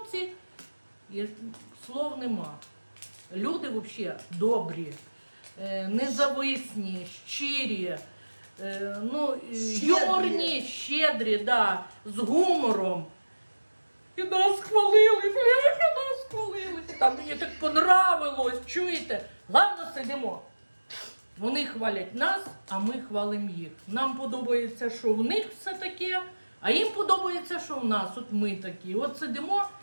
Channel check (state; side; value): inverted; both; correlation -1.00